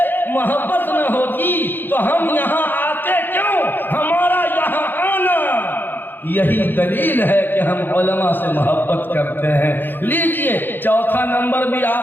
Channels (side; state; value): right; late; 0.093 ms